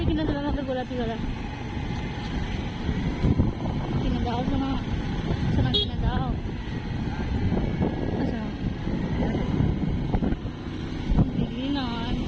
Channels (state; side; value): identical; both; correlation 1.00